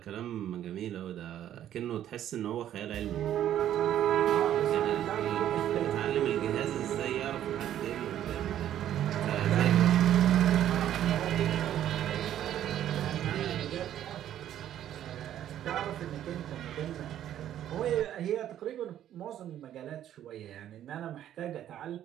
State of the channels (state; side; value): quieter; left; 11.3 dB